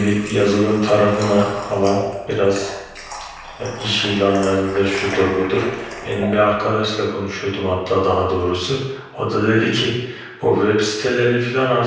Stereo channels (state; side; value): identical; both; correlation 1.00